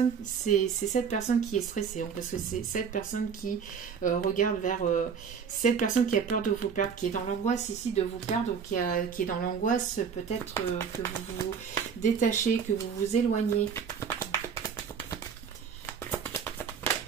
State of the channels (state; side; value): quieter; left; 6.7 dB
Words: qui est stressée, parce que c'est cette personne qui regarde vers... cette personne qui a peur de vous perdre, qui est dans l'angoisse ici de vous perdre, ou qui est dans l'angoisse peut-être que vous vous détachez, que vous vous éloignez.